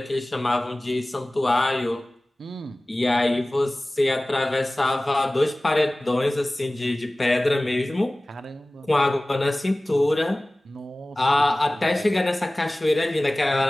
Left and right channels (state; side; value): normal; both; correlation 0.98